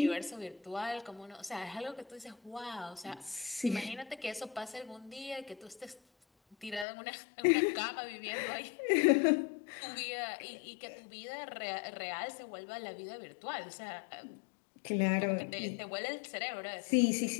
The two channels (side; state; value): right; drops out; at 6.9 s